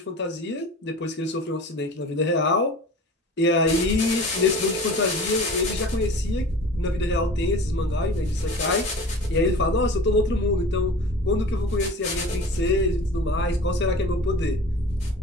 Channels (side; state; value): both; normal; correlation 0.40